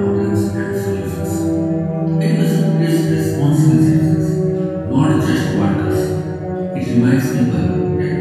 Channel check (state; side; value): identical; both; correlation 1.00